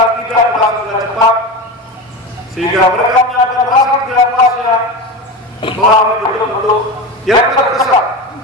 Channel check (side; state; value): both; normal; correlation 0.24